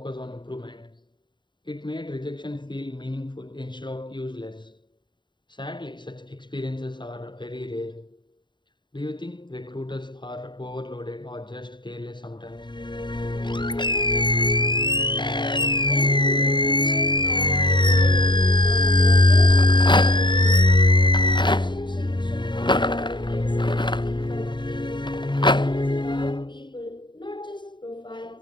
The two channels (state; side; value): late; right; 0.22 ms